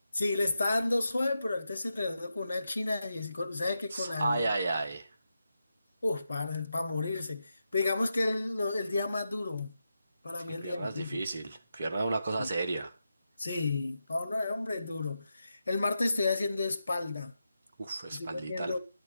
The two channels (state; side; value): inverted; both; correlation -0.88